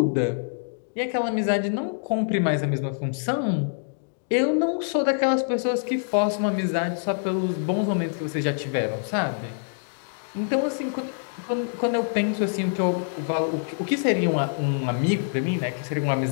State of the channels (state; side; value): silent; right; digital silence